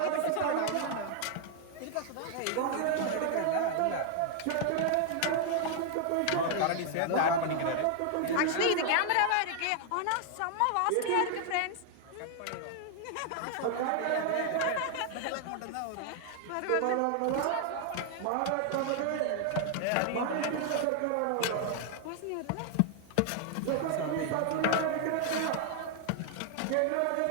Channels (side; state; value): both; different; correlation 0.00